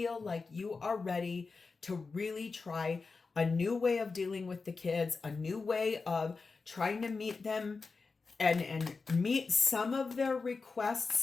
like you are ready to really try a new way of dealing with the kids, a new way of trying to meet them and meet some of their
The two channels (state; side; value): quieter; right; 4.4 dB